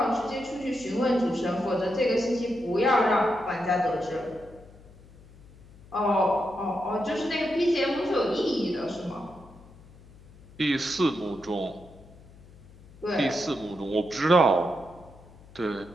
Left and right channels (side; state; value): left; noise; hum, 23 dB below the sound